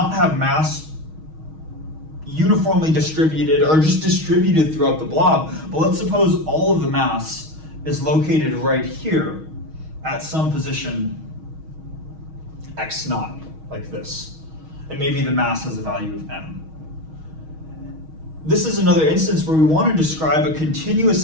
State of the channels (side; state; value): left; late; 6.3 ms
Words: have mass uniformly distributed or just distributed throughout the blob. But let's suppose all of the mass is located right here at some position x naught, like this. And maybe the mass has a value of m. This is another instance where we want to describe a continuous